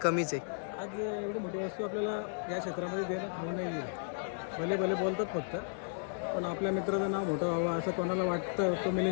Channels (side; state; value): right; silent; digital silence